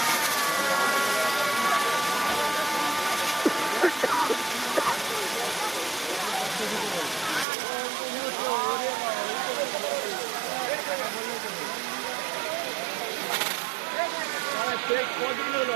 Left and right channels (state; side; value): drops out; left; at 7.5 s